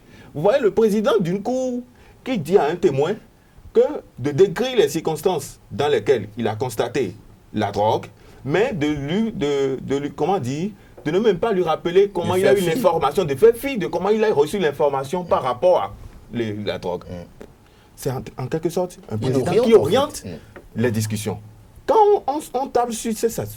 Vous voyez le président d'une cour qui dit à un témoin que de décrire les circonstances dans lesquelles il a constaté la drogue, mais de ne même pas lui rappeler comment il a eu l'information, de faire fi de comment il a reçu l'information par rapport à la drogue. C'est en quelque sorte un président qui oriente les discussions. Quand on table sur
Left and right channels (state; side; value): identical; both; correlation 1.00